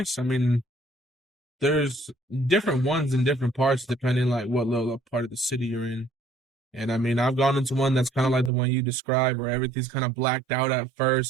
I mean, there's different ones in different parts depending like what little part of the city you're in. And I mean, I've gone into one that's kind of like the one you described, where everything's kind of blacked out at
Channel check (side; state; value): left; drops out; at 8.5 s